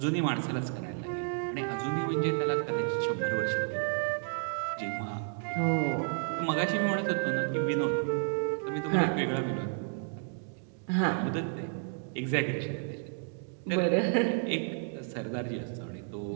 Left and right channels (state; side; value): silent; left; 57 dB below the other